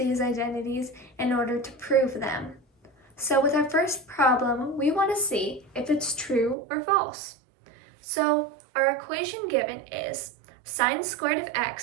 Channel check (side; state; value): left; drops out; at 6.6 s